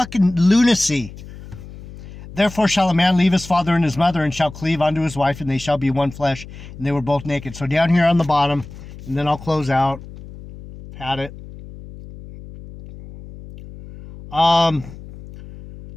lunacy. Therefore shall a man leave his father and his mother and shall cleave unto his wife, and they shall be one flesh. And they were both naked. So down here on the bottom, and then I'll close out. Had it.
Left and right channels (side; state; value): left; noise; hum, 16 dB below the sound